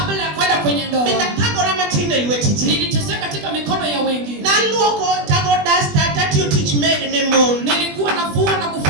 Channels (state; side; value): late; left; 20 ms